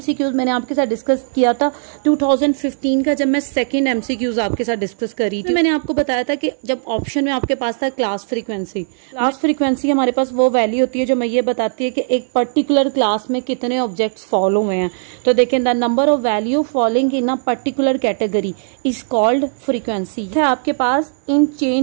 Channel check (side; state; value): left; silent; 59 dB below the other